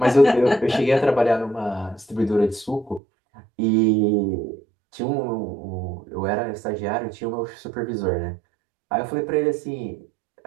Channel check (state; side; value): drops out; left; at 3.0 s